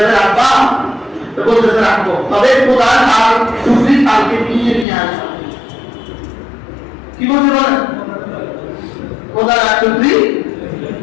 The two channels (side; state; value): right; drops out; at 4.9 s